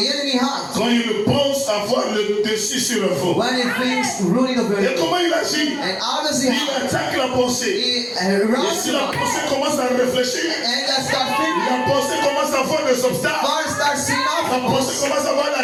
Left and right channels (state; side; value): identical; both; correlation 1.00